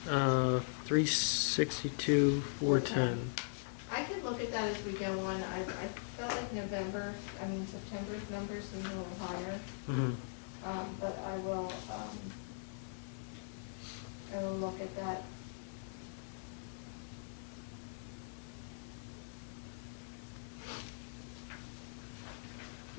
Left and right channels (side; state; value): right; silent; digital silence